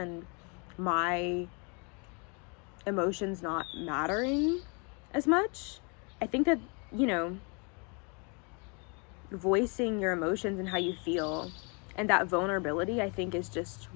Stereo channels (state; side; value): quieter; right; 34.0 dB